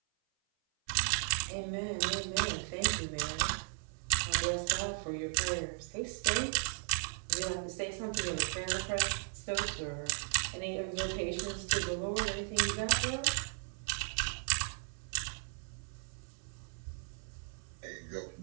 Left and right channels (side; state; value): left; silent; 54 dB below the other